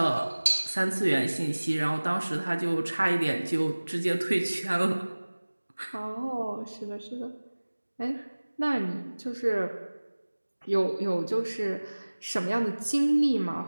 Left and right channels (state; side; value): inverted; both; correlation -1.00